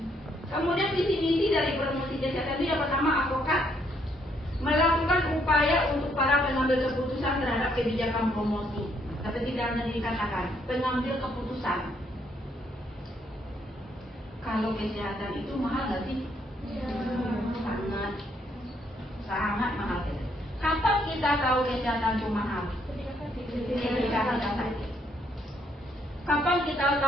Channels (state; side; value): normal; both; correlation 0.71